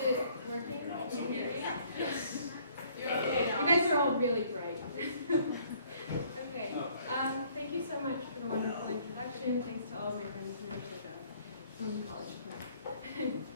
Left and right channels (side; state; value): both; inverted; correlation -0.61